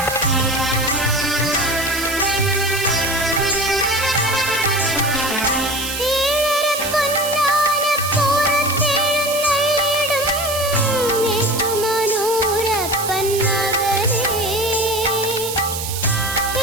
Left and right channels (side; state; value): right; noise; hiss, 6 dB below the sound